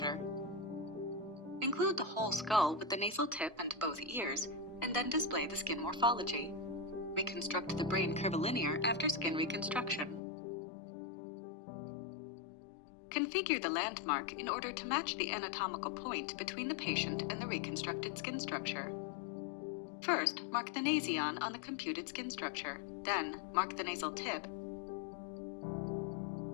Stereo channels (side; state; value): right; drops out; at 10.2 s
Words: Include the whole skull with the nasal tip and both ears, and then display the skin morphology. Reconstruct the brain curvilinear after skin reconstruction. Configure the landmark in order to match the anatomical point between the patient and the reconstructed skin structure. First, mark the nasion on the computed skin structure. Then, mark the nasal tip